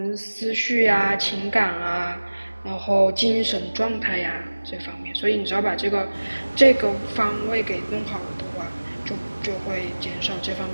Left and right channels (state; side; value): inverted; both; correlation -1.00